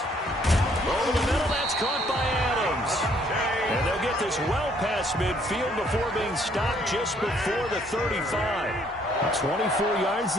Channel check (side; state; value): both; normal; correlation 0.65